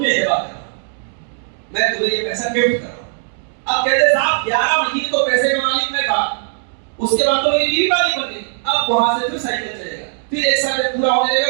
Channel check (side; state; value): left; silent; digital silence